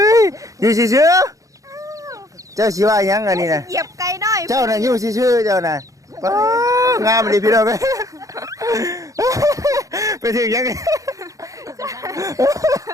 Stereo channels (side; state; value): left; late; 0.16 ms